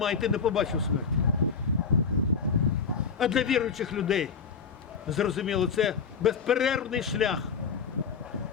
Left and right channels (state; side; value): quieter; right; 5.8 dB